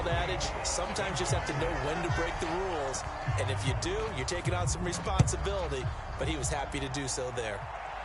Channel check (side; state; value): both; identical; correlation 1.00